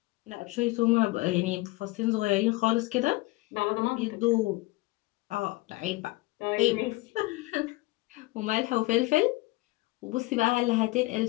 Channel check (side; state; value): right; quieter; 21.1 dB